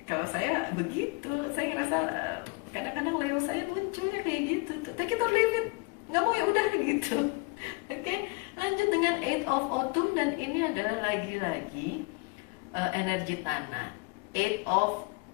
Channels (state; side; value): quieter; right; 29.4 dB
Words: kalau saya begitu, saya ngerasa kadang-kadang Leo saya munculnya kayak gitu tuh, take it or leave it, nggak mau ya udah gitu. Oke, lanjut dengan Eight of Autumn, dan ini adalah lagi-lagi energi tanah. Eight of